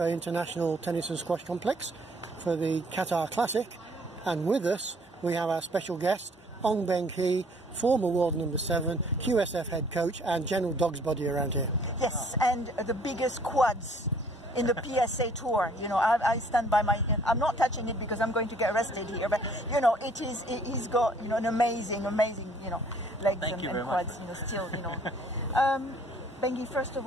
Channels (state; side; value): normal; both; correlation 0.59